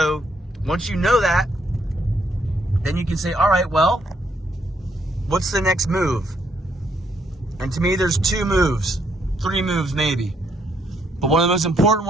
once you know that, then you can say, all right, well, what's the next move? And to me, there's 2 moves, 3 moves maybe. But one of the most important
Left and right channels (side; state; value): both; normal; correlation 0.73